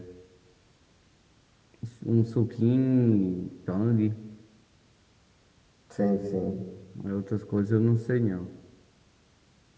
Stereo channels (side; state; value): both; identical; correlation 1.00